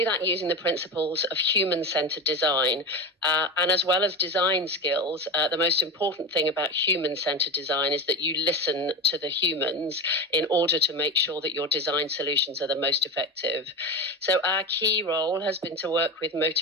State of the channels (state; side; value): normal; both; correlation 0.23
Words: that using the principles of human-centred design. And as well as design skills, the most important thing about human-centred design is that you listen to the humans in order to make sure that your design solutions are the most effective. So our key role has been to work with